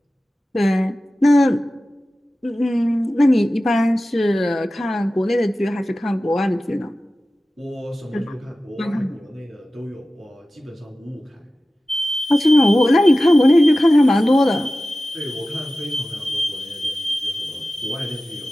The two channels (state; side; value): normal; both; correlation 0.95